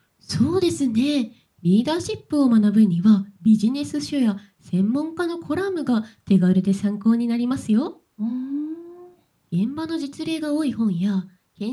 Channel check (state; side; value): identical; both; correlation 1.00